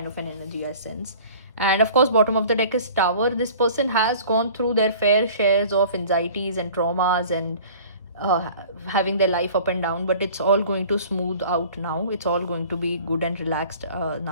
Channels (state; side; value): inverted; both; correlation -0.46